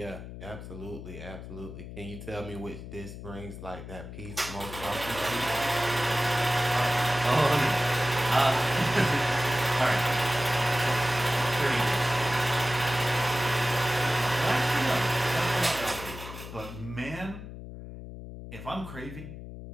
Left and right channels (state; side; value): noise; left; hum, 11 dB below the sound